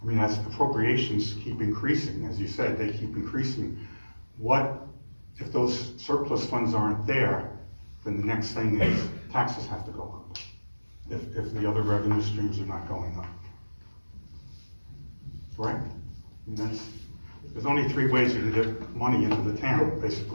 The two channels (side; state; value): both; inverted; correlation -1.00